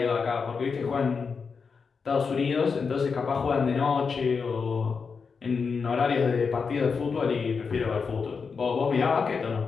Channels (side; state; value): right; quieter; 5.4 dB